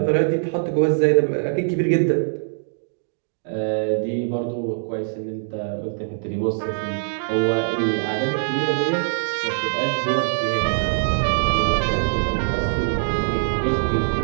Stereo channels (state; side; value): silent; left; digital silence